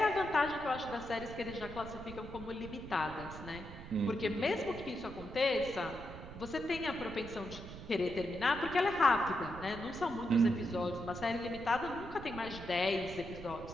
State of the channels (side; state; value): right; noise; rumble, 12 dB below the sound